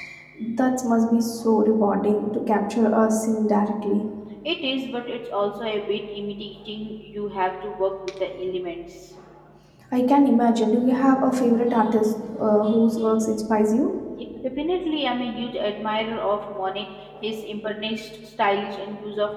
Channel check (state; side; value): identical; both; correlation 1.00